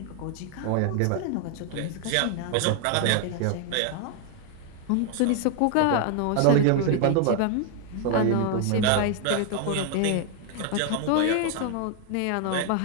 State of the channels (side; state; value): both; different; correlation 0.00